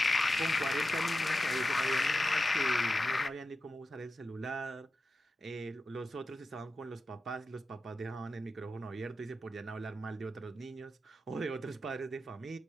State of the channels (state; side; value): normal; both; correlation 0.90